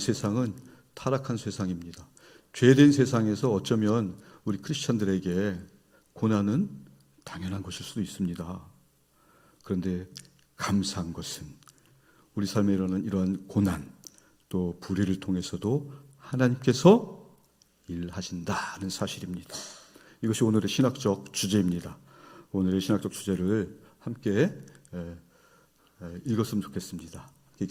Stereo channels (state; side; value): identical; both; correlation 1.00